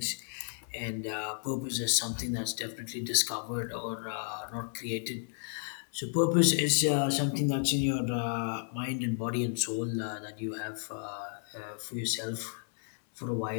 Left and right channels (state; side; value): silent; right; digital silence